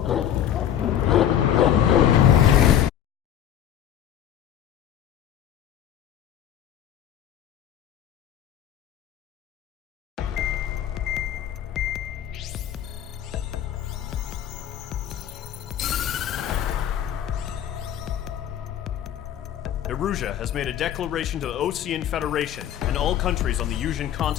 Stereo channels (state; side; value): quieter; right; 10.2 dB